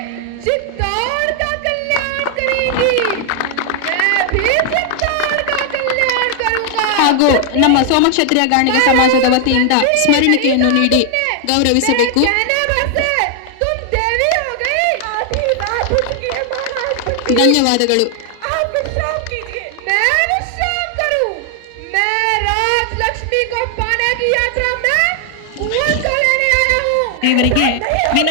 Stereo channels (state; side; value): different; both; correlation 0.00